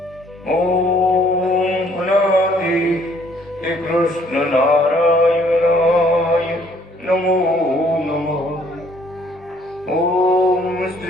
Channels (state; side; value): normal; both; correlation 0.62